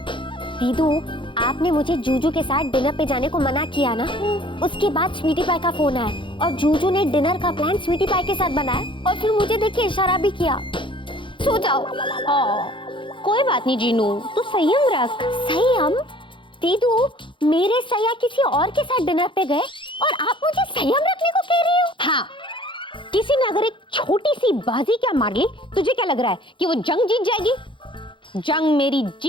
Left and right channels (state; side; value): late; right; 0.24 ms